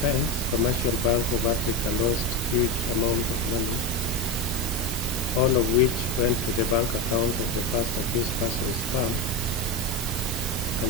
Commercial Bank of Africa lost huge amount of money, all of which went to the bank account of the first accused person's firm,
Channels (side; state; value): both; normal; correlation 0.17